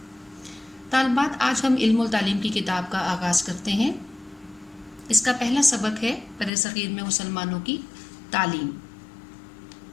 तालिबात, आज हम इल्मुल तालीम की किताब का आगाज़ करते हैं। इसका पहला सबक है बरे-सग़ीर में मुसलमानों की तालीम।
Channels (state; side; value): drops out; right; at 6.5 s